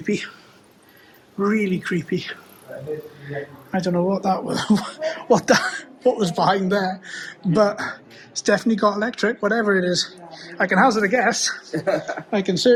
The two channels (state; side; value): identical; both; correlation 1.00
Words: Really creepy. I don't know what that was, what was behind there, but it's definitely got electric, whatever it is. I can hazard a guess. I can